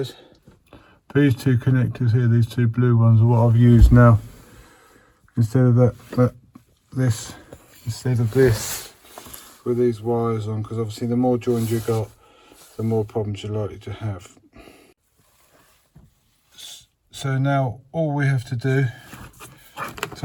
These two connectors here, these two blue ones, are what I've used now instead of this with these wires on, because obviously the more joined you got, the more problems you're likely to have. So now all we have to do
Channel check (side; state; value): both; identical; correlation 1.00